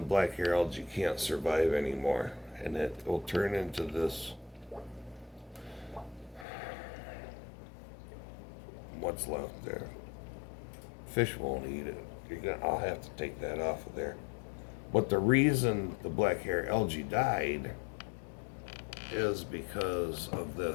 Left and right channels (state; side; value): drops out; right; at 6.5 s